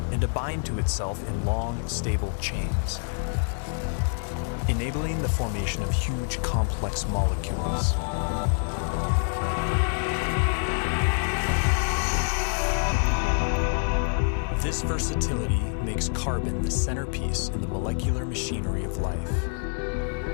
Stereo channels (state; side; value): silent; right; 56 dB below the other